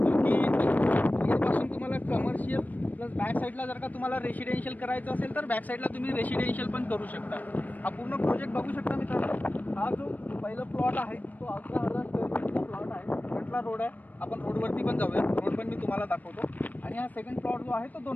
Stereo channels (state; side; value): late; right; 0.081 ms